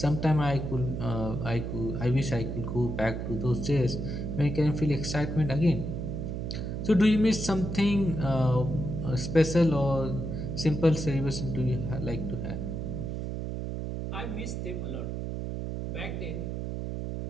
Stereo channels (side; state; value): right; noise; hum, 4 dB below the sound